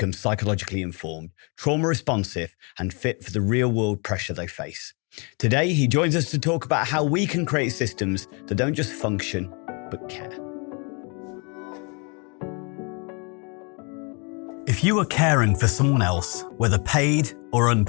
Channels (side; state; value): right; quieter; 33.8 dB